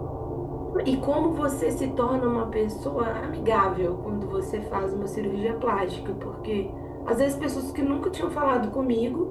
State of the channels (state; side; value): identical; both; correlation 1.00